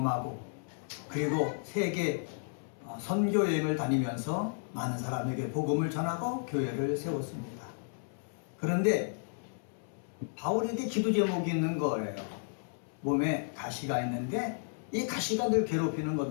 그리고 세계 선교 여행을 다니면서 많은 사람에게 복음을 전하고 교회를 세웠습니다. 그런데 바울에게 기도 제목이 있는 거예요. 몸에 가시가 있는데 이 가시가 늘 괴롭히는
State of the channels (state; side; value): silent; right; 56 dB below the other